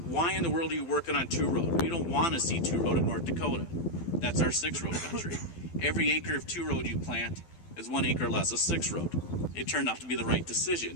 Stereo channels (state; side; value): late; right; 12 ms